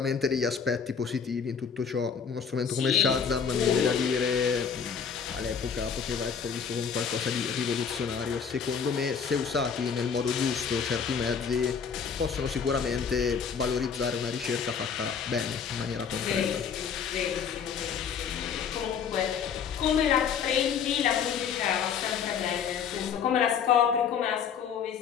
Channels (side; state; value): right; quieter; 6.8 dB